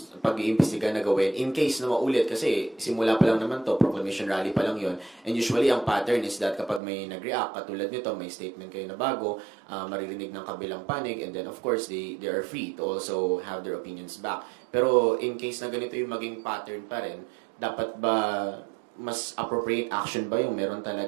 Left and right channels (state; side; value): drops out; left; at 6.8 s